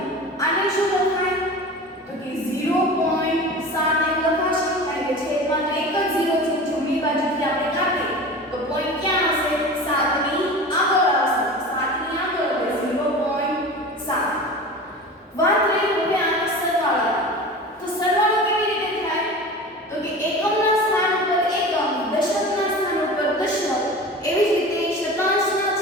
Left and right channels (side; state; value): both; normal; correlation 0.34